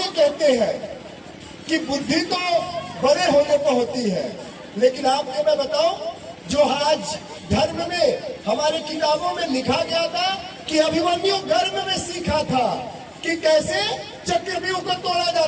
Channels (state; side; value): identical; both; correlation 1.00